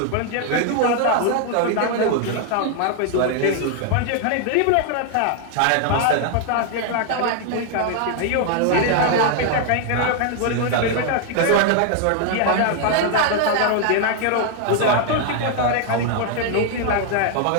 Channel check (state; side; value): different; both; correlation 0.00